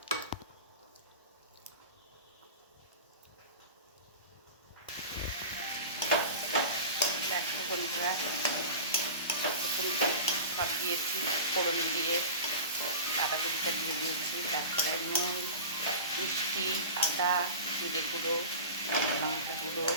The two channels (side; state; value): both; inverted; correlation -0.31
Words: দেখো বন্ধুরা, সব দিয়েছি ফোড়ন দিয়ে, বাঁধাকপিটা দিয়ে দিয়েছি, তারপরে নুন, মিষ্টি, আদা, জিরে গুঁড়ো, লঙ্কা গুঁড়ো,